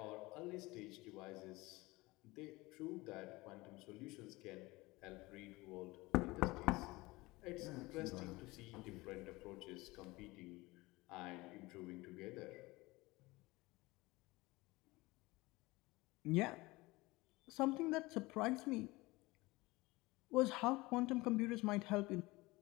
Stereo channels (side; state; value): right; quieter; 21.5 dB